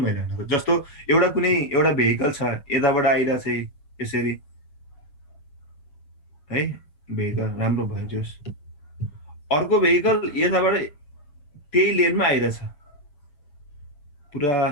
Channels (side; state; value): right; late; 6.9 ms